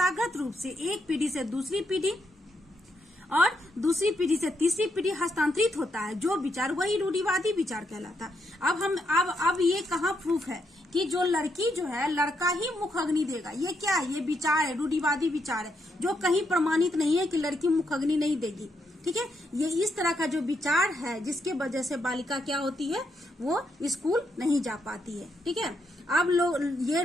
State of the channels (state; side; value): normal; both; correlation 0.79